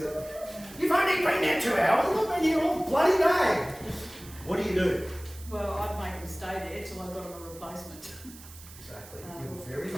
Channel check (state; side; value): noise; right; hiss, 18 dB below the sound